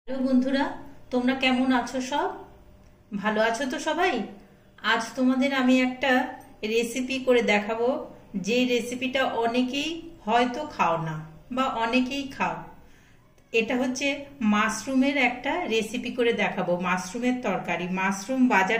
Hello বন্ধুরা, তোমরা কেমন আছো? সব ভালো আছো তো সবাই? আজ তোমাদের আমি একটা রেসিপি করে দেখাবো, যে রেসিপিটা অনেকেই হয়তো খাও না বা অনেকেই খাও। এটা হচ্ছে মাশরুমের একটা রেসিপি করে দেখাবো। মাশরুমের তরকারি। মাশরুম বাজার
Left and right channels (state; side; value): identical; both; correlation 1.00